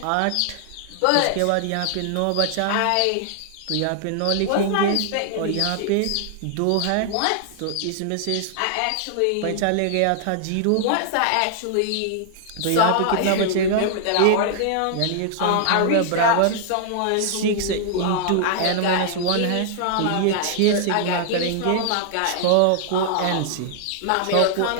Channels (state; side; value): different; both; correlation -0.01